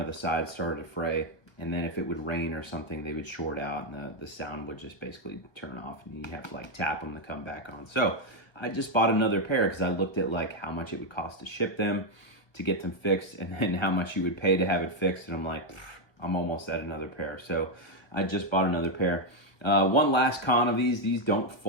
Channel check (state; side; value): late; right; 1.1 ms